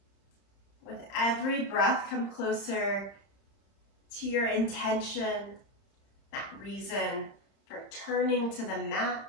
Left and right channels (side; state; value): right; late; 31 ms